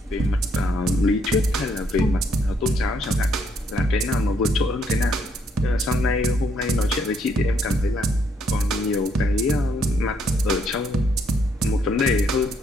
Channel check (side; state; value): both; normal; correlation 0.71